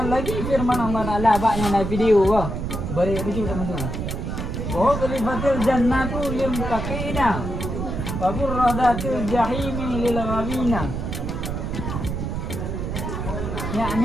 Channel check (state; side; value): noise; right; rumble, 4 dB below the sound